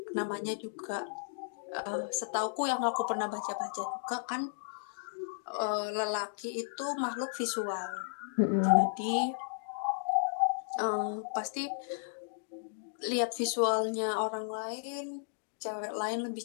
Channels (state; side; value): silent; right; digital silence